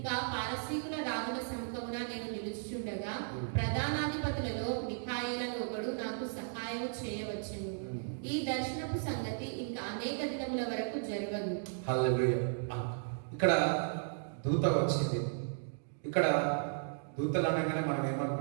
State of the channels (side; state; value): left; silent; digital silence